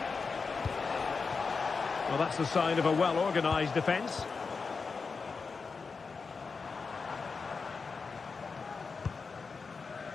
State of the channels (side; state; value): right; quieter; 4.8 dB